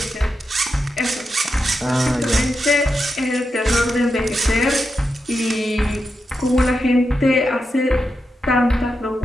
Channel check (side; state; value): both; normal; correlation 0.87